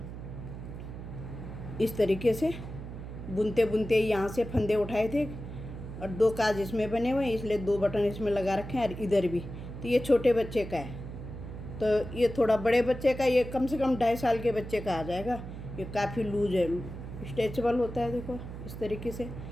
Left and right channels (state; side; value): noise; right; hum, 10 dB below the sound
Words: इस तरीके से बुनते बुनते यहाँ से फंदे उठाए थे। और 2 काज इसमें बने हुए हैं, इसलिए 2 बटन इसमें लगा रखे हैं। और इधर भी, तो ये छोटे बच्चे का है, तो ये थोड़ा बड़े बच्चे का, ये कम से कम 2.5 साल के बच्चे का आ जाएगा। ये काफ़ी लूज है, स्ट्रेचेबल होता है, देखो इस तरीके से।